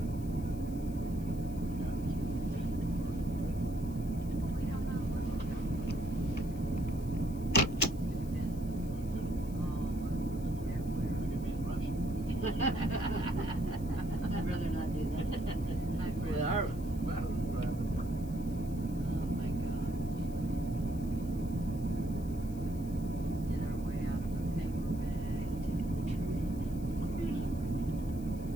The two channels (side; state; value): left; noise; hiss, 21 dB below the sound